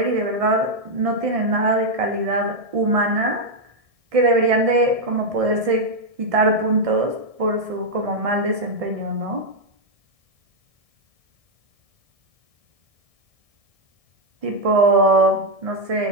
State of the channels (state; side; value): late; left; 1.6 ms